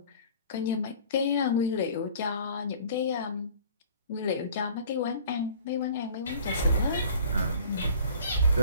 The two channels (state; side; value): inverted; both; correlation -0.48